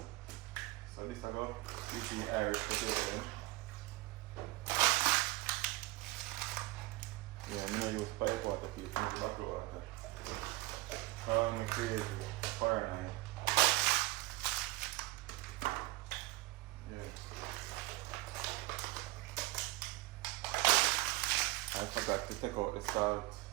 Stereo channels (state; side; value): quieter; left; 20.7 dB